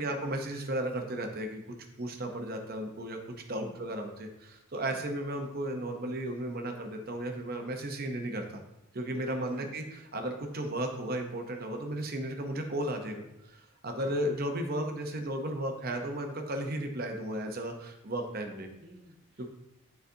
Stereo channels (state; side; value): normal; both; correlation 0.39